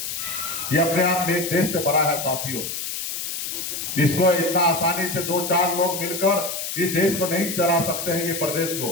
ये अपने आप में एक देश से बड़ा है साथियों। इसको इतना आसानी से 2-4 लोग मिलकर इस देश को नहीं चला सकते हैं, ये प्रदेश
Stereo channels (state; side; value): noise; left; hiss, 5 dB below the sound